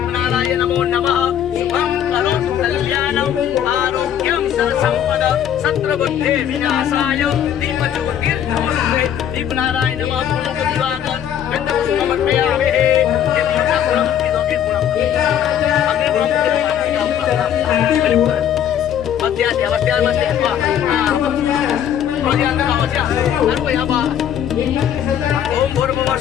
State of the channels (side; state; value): right; quieter; 9.8 dB